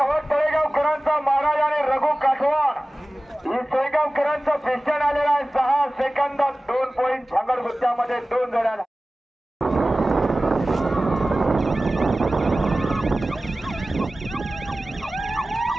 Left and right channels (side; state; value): both; normal; correlation 0.97